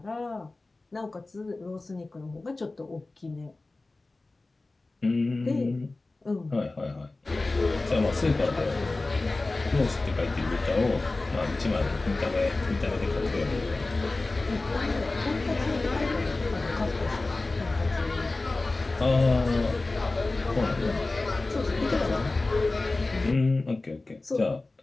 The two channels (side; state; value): right; quieter; 3.2 dB